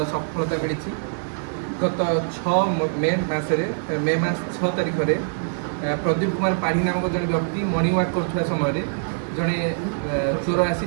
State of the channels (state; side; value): silent; left; 63 dB below the other